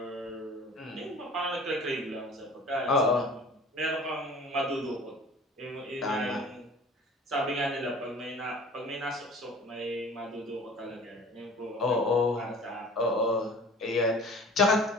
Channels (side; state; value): both; normal; correlation 0.45